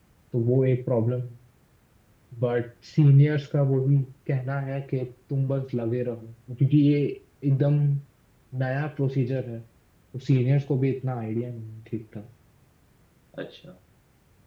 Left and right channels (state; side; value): identical; both; correlation 1.00